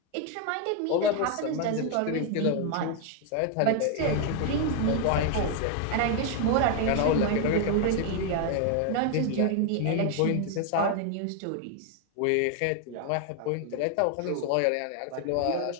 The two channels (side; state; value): both; different; correlation 0.01